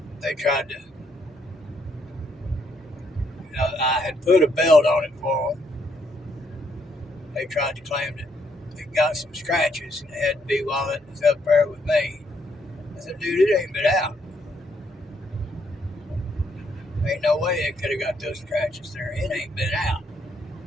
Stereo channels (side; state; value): both; normal; correlation 0.73